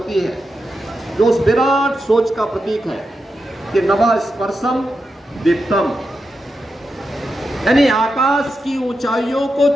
है जो उस विराट सोच का प्रतीक है कि नभः स्पर्शम दीप्तम, यानी आकाश की ऊंचाइयों को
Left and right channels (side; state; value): both; normal; correlation 0.88